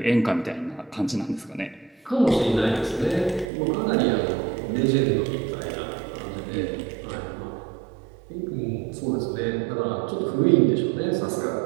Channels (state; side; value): drops out; left; at 3.5 s